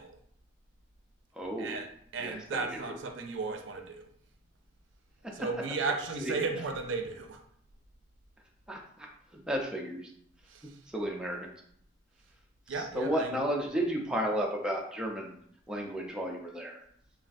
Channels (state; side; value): normal; both; correlation 0.41